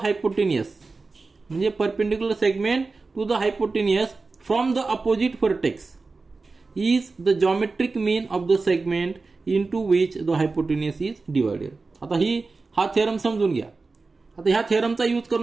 hypotenuse, म्हणजे perpendicular segment to the hypotenuse from the opposite vertex is the geometric mean of the segment into which the hypotenuse is divided. आता हा theorem समजून घ्या. आता ह्या थेरमचा use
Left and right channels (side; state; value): left; quieter; 3.9 dB